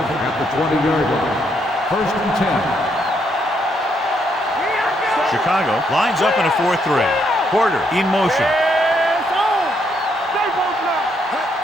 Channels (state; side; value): normal; both; correlation 0.74